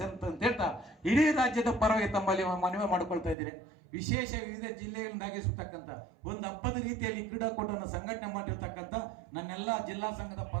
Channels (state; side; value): drops out; left; at 3.4 s